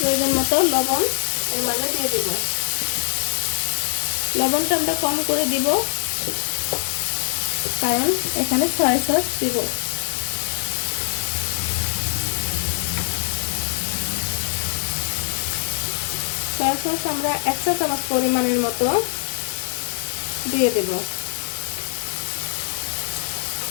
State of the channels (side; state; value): right; silent; digital silence